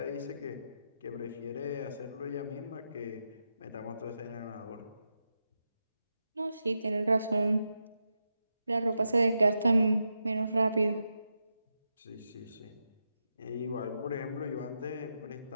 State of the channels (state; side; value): inverted; both; correlation -0.86